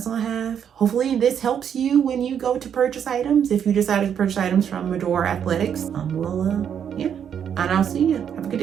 all I have. Hopefully this helps you when you go to purchase items. If you decided to purchase items from Madore Athletics, and I'll see you. Have a good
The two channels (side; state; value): left; quieter; 8.4 dB